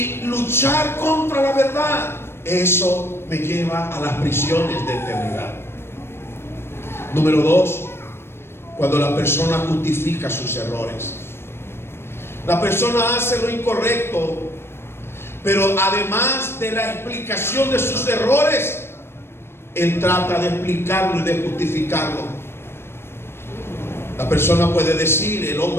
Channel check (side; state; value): right; late; 0.12 ms